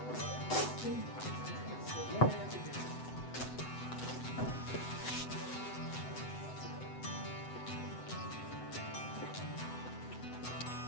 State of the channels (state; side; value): late; right; 7.9 ms